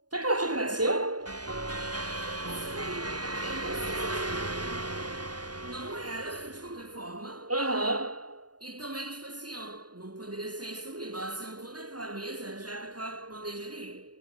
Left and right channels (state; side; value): late; left; 0.69 ms